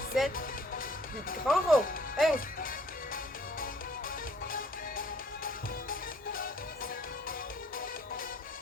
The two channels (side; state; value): both; normal; correlation 0.60